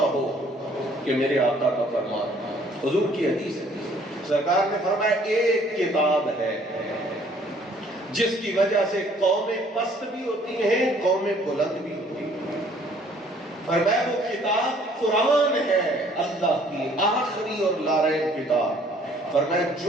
ہو کہ میرے آقا کا فرمان، حضور کی حدیث ہے، سرکار نے فرمایا ایک کتاب ہے جس کی وجہ سے قومیں پست بھی ہوتی ہیں، قومیں بلند بھی ہوتی ہیں۔ فرمایا وہ کتاب قرآن ہے، اللہ کی آخری اور لاریب کتاب۔ فرمایا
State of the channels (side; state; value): both; normal; correlation 0.59